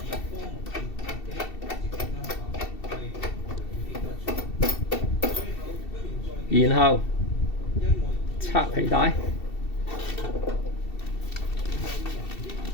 然後拆皮帶，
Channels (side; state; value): right; late; 2.7 ms